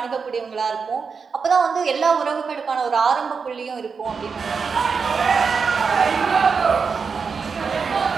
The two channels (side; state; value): left; quieter; 5.5 dB